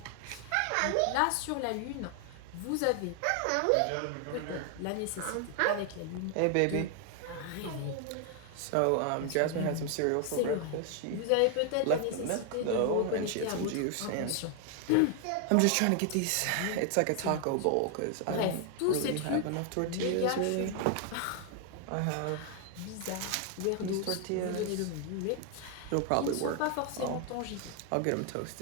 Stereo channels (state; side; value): different; both; correlation 0.00